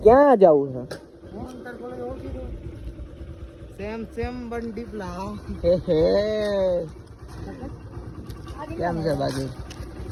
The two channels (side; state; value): both; identical; correlation 1.00